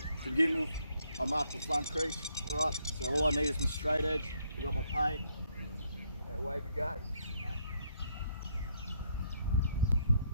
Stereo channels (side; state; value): both; inverted; correlation -0.72